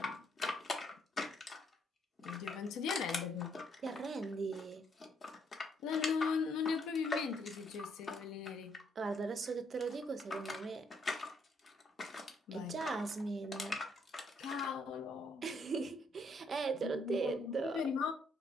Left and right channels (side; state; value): both; normal; correlation 0.71